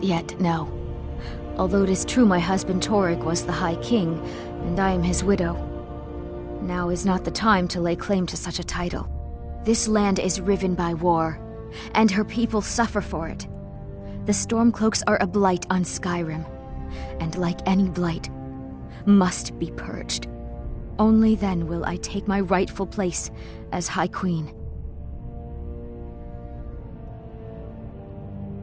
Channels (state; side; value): identical; both; correlation 1.00